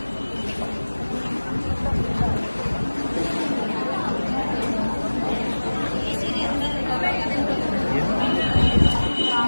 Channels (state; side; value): inverted; both; correlation -1.00